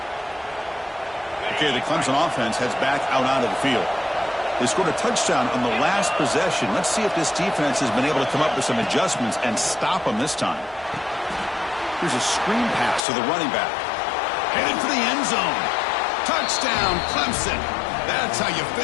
Okay, the Clemson offense heads back out onto the field. They scored a touchdown on the last possession. Let's see if this defense has been able to come up with some adjustments and stop them this time. Here's a screen pass to the running back. Headed for the end zone. Touchdown, Clemson. That's how you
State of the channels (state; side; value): drops out; right; at 13.0 s